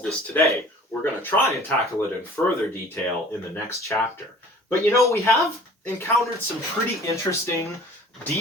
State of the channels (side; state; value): both; normal; correlation 0.47